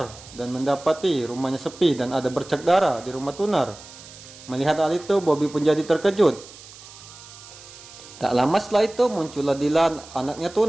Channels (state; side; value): noise; right; hiss, 18 dB below the sound